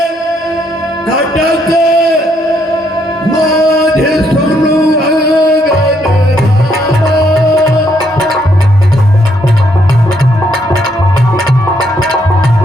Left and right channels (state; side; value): normal; both; correlation 0.72